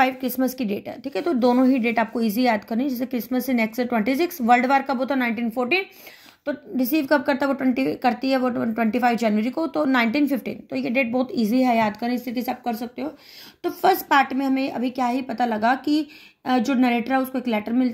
क्रिसमस की डेट है, ठीक है। तो दोनों ही डेट आपको इजी याद करनी है, जैसे क्रिसमस से नेक्स्ट 26, वर्ल्ड वार कब होता है? 1914, तो रिसीव कब करता है वो 20 करती है वो 25 जनवरी को, तो 1915। तो ये डेट बहुत इजी है याद करनी, इस तरीके से आप कर सकते हो। तो फर्स्ट पार्ट में हमें अभी क्या ही पता लगा कि जो नरेटर है उसको एक लेटर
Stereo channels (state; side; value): identical; both; correlation 1.00